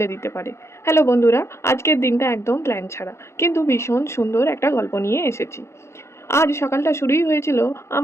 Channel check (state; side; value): late; right; 0.13 ms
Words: দিতে পারে? হ্যালো বন্ধুরা, আজকের দিনটা একদম প্ল্যান ছাড়া কিন্তু ভীষণ সুন্দর একটা গল্প নিয়ে এসেছি। আজ সকালটা শুরুই হয়েছিল